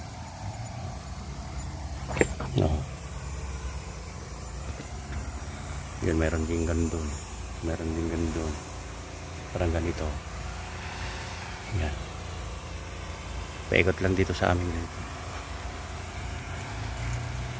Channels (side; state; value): both; identical; correlation 1.00